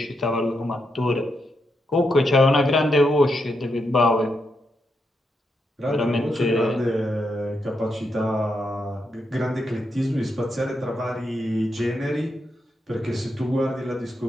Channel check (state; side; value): normal; both; correlation 0.83